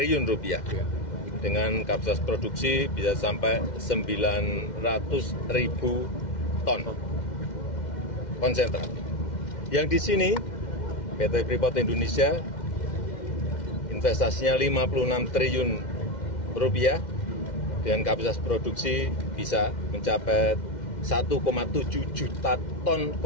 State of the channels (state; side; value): late; right; 2.1 ms